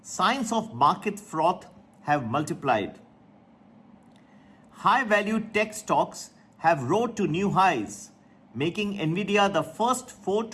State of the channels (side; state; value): both; identical; correlation 1.00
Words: signs of market froth have multiplied. High-value tech stocks have rose to new highs, making Nvidia the first $4